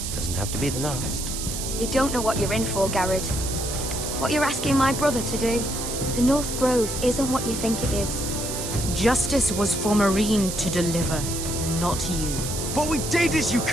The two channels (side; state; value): right; noise; hiss, 5 dB below the sound